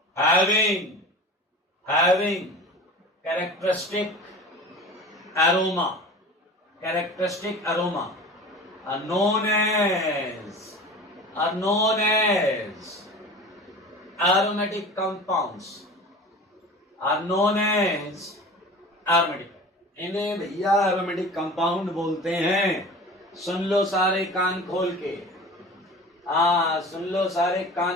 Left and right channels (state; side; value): normal; both; correlation 0.37